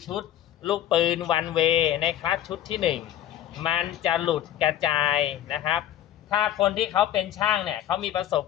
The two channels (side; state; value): right; quieter; 12.0 dB